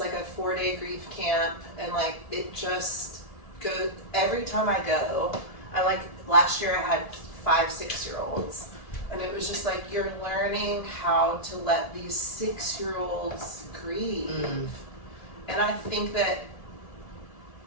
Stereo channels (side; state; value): right; late; 1.7 ms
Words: a 4-day grief camp. And like it just goes, every time I go, I like, last year I had 5-6-year-olds. And it was just like, you're learning how to let these 6-year-olds grieve. And I think that